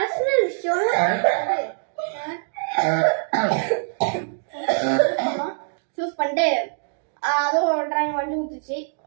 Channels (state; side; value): silent; left; digital silence